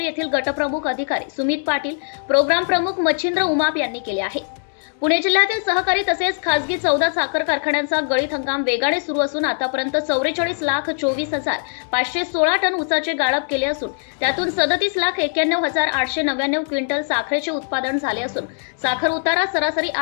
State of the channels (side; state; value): right; silent; digital silence